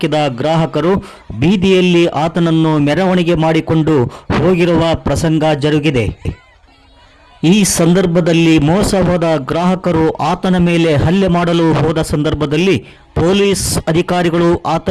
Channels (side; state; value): both; identical; correlation 1.00